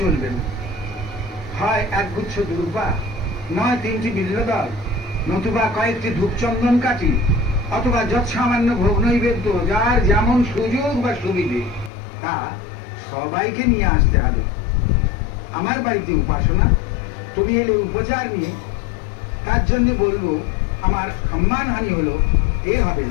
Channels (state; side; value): drops out; right; at 11.9 s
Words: চলবে না। হয় একগুচ্ছ দুর্বা, নয় 3টি বিল্লদল, নতুবা কয়েকটি ধূপচন্দন কাঠি, অথবা যৎসামান্য ভোগ নৈবেদ্য, যার যেমন সুযোগ বা সুবিধে তা সবাইকে নিয়ে আসতে হবে। আমার বাড়িতে উপাসনা, তুমি এলে উপচার নিয়ে, তার জন্য বলবো আমার সম্মানহানি হলো, এ হবে